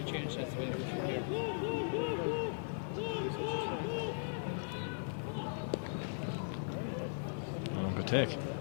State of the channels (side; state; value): right; silent; 52 dB below the other